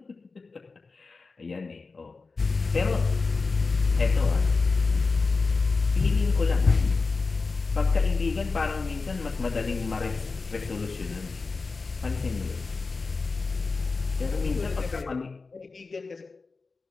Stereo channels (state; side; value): quieter; right; 4.1 dB